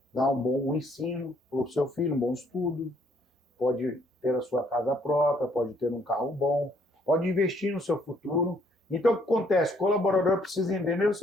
dar um bom ensino para o seu filho, um bom estudo, pode ter a sua casa própria, pode ter um carro bom, pode investir no seu futuro. Então, o que acontece? O colaborador precisa entender o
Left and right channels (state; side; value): normal; both; correlation 0.65